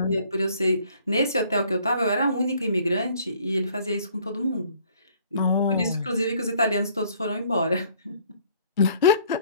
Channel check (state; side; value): inverted; both; correlation -0.59